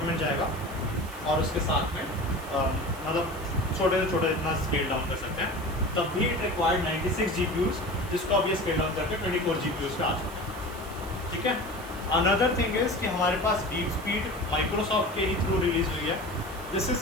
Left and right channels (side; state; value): right; noise; hiss, 18 dB below the sound